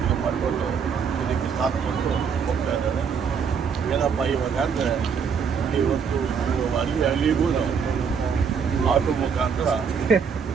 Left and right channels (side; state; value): left; quieter; 6.5 dB